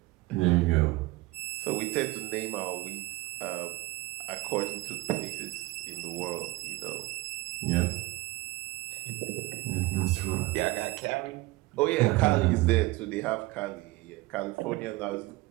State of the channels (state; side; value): quieter; left; 20.1 dB